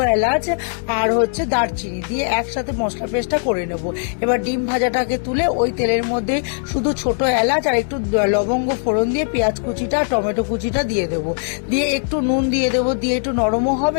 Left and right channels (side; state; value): right; silent; digital silence